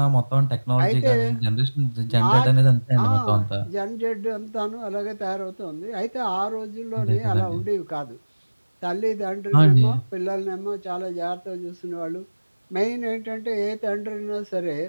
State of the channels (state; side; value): inverted; both; correlation -1.00